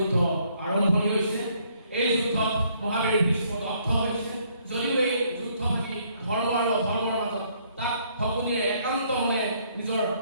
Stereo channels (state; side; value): inverted; both; correlation -0.67